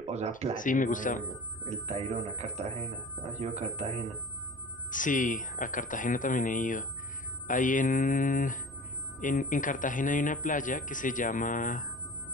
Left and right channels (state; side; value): noise; left; rumble, 28 dB below the sound